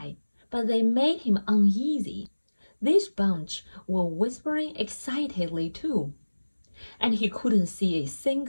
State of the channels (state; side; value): inverted; both; correlation -1.00